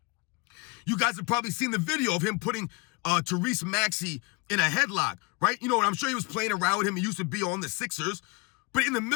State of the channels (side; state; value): right; quieter; 26.7 dB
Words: You guys have probably seen the video of him putting Tyrese Maxey in a headlock, right? You know, I'm sure he was playing around with him. He used to be on the Sixers. But in the